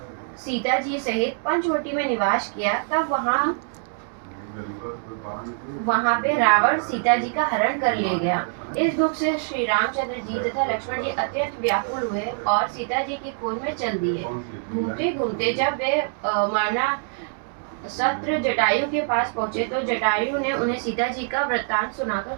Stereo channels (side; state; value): left; silent; digital silence